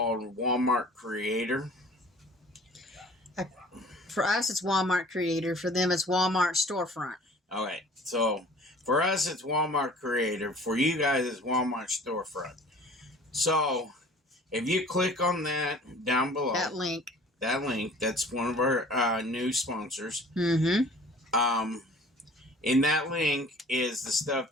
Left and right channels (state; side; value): normal; both; correlation 0.48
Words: Walmart Creator. For us, it's Walmart Creator. For them, it's Walmart Storefront. Okay, so for us, it's Walmart Creator. For you guys, it's Walmart Storefront. So if you click on that down below, That link, that's one of our new sponsors. mm-hmm. In that link is the stuff